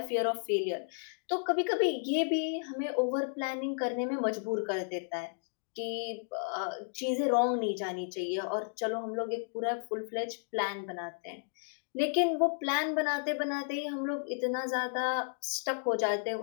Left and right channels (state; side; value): silent; right; digital silence